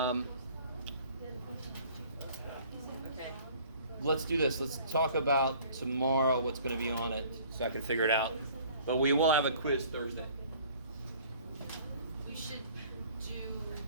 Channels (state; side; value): inverted; both; correlation -0.52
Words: Okay. Let's do this. Let's talk about tomorrow what's going to be on it so I can figure it out. But we will have a quiz Thursday. We should do